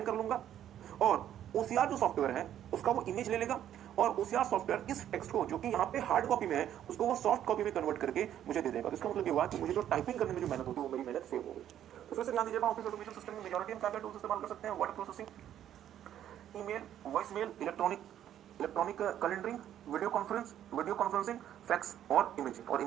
कर लूंगा और OCR जो सॉफ्टवेयर है उसका वो इमेज ले लेगा और OCR सॉफ्टवेयर इस टेक्स्ट को जो कि यहाँ पे हार्ड कॉपी में है उसको वो सॉफ्ट कॉपी में कन्वर्ट करके मुझे दे देगा। तो इसका मतलब ये हुआ कि मुझे जो टाइपिंग करने में जो मेहनत होती है वो मेरी मेहनत सेव हो गई। तो फिर से ध्यान दीजिएगा, ऑफिस ऑटोमेशन सिस्टम में मेजॉरिटी हम क्या टूल्स इस्तेमाल कर सकते हैं? Word processing, email, voice mail, electronic calendaring, video conferencing, fax और इमेजिंग। और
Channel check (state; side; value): quieter; left; 10.9 dB